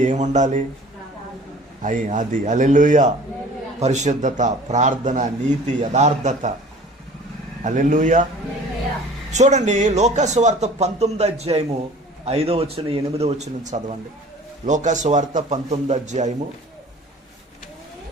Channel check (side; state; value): both; normal; correlation 0.46